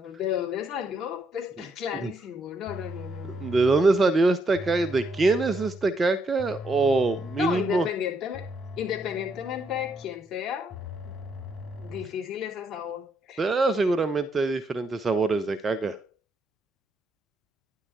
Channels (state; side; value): normal; both; correlation 0.74